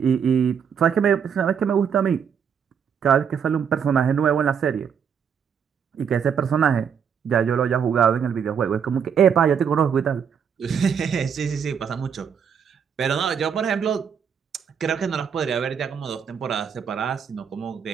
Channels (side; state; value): left; quieter; 7.4 dB